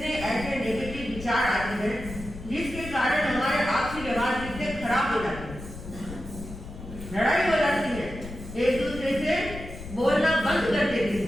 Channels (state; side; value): noise; left; rumble, 12 dB below the sound